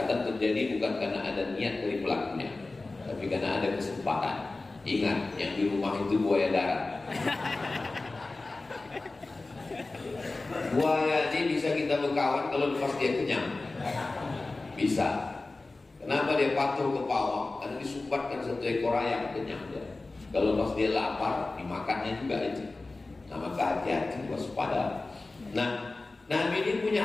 terjadi bukan karena ada niat dari pelakunya, tapi karena ada kesempatan. Ingat, yang di rumah itu buaya darat. Buaya ini bisa kita berkawan kalau lepas dia kenyang. Bisa. Kenapa dia patuh ke pawang? Karena disumbatkan 1 ekor ayam, kenyang dia. Kalau lepas dia lapar, dimakannya juga itu. Nah, maka hati-hati, waspada. Nah, Nabi ini punya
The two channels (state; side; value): quieter; right; 3.3 dB